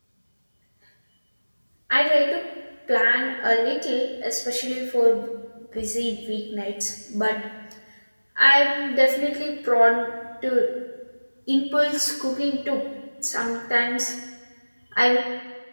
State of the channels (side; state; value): both; inverted; correlation -1.00